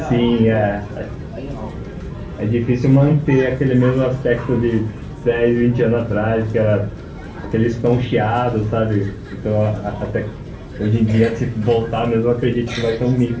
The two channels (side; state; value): both; identical; correlation 1.00